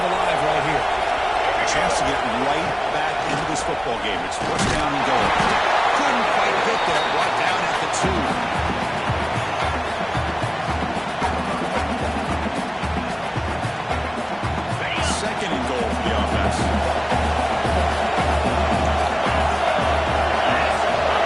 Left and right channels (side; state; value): both; identical; correlation 1.00